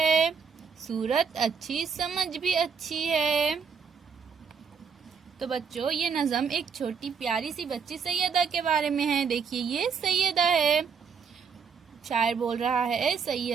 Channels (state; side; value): quieter; left; 6.2 dB